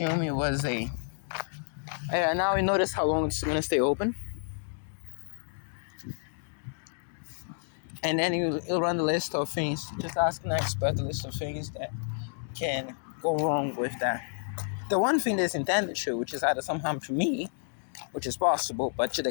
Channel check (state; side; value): silent; right; digital silence